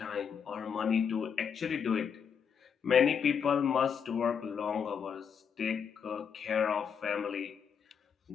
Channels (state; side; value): quieter; right; 7.1 dB